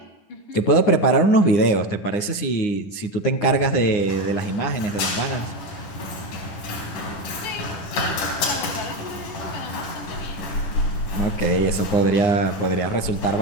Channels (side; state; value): right; late; 9.7 ms